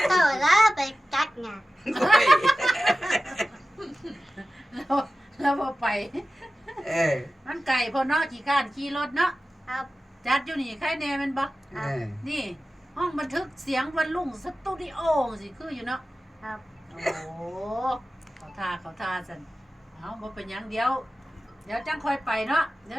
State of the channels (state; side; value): normal; both; correlation 0.95